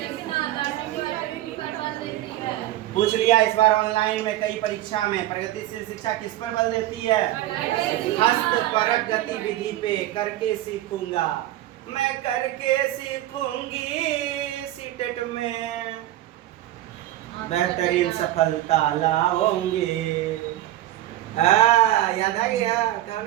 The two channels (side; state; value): left; quieter; 14.3 dB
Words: लर्निंग को एक्टिविटी पर बल देती है। पूछ लिया इस बार ऑनलाइन में कई परीक्षा में, प्रगतिशील शिक्षा किस पर बल देती है? हस्तपरक गतिविधि पे। करके सीखूंगा, मैं करके सीखूंगी, सीटेट में बेहतरीन सफलता लाओगे। याद आ गया? कौन